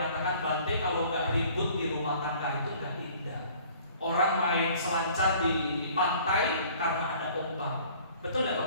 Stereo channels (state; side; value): inverted; both; correlation -0.53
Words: Bante kalau nggak ribut di rumah tangga itu nggak indah. Orang main selancar di pantai karena ada ombak. Betul nggak